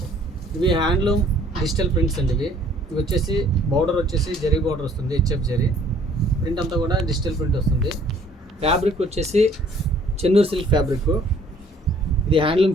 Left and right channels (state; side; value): normal; both; correlation 0.58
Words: ఇవి handloom digital prints అండి. ఇవి వచ్చేసి బోర్డర్ వచ్చేసి జరీ బోర్డర్ వస్తుంది, హెచ్ఎఫ్ జరీ ప్రింట్ అంతా కూడా డిజిటల్ ప్రింట్ వస్తుంది. ఫ్యాబ్రిక్ వచ్చేసి చెన్నూరు సిల్క్ ఫ్యాబ్రిక్. ఇది